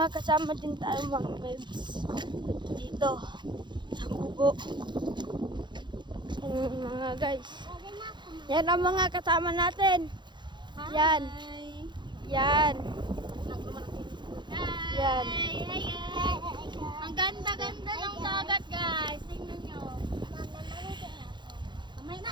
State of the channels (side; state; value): left; late; 0.22 ms